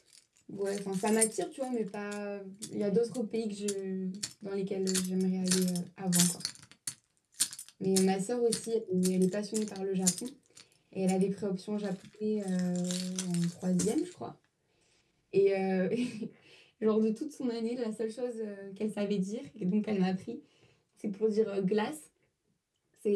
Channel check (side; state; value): both; identical; correlation 1.00